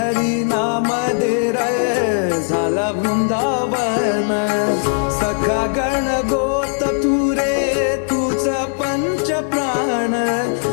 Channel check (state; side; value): silent; right; digital silence